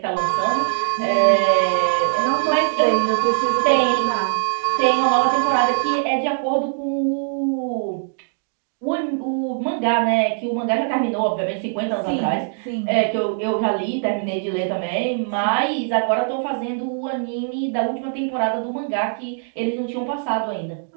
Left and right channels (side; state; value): left; silent; digital silence